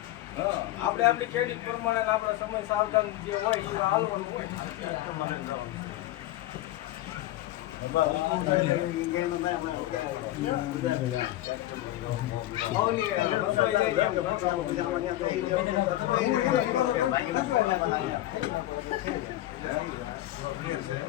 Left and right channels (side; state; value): right; quieter; 15.3 dB